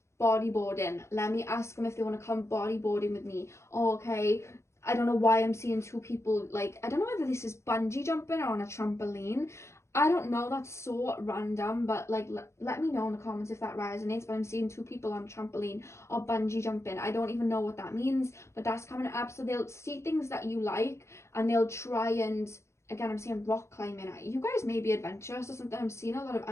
bodyboarding. Let me ask them if they want to come bodyboarding with me. Oh, okay, I don't know why I'm seeing two people, like, I don't know whether this is bungee jumping or on a trampoline. I don't know, that's so random, but like let me know in the comments if that resonates. But I'm seeing two people on trampoline or bungee jumping. I don't even know what that means, but that's coming up. So they'll see things that you like and they'll try and, again, I'm seeing rock climbing. You guys may be adventurous or something. I'm seeing a lot of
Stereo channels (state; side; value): late; right; 0.13 ms